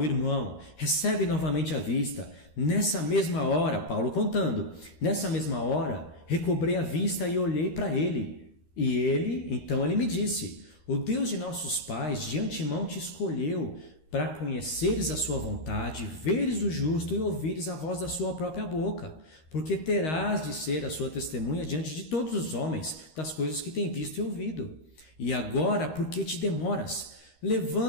irmão, recebe novamente a vista. Nessa mesma hora, Paulo contando, nessa mesma hora, recobrei a vista e olhei para ele. E então ele me disse: o Deus de nossos pais de antemão te escolheu para conheceres a sua vontade, veres o justo e ouvires a voz da sua própria boca, porque terás de ser a sua testemunha diante de todos os homens das coisas que tem visto e ouvido. E agora, por que te demoras?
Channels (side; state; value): right; late; 13 ms